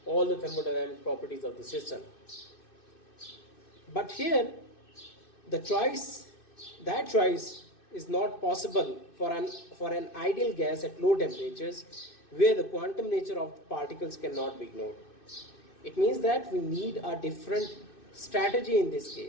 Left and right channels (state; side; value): late; right; 2.6 ms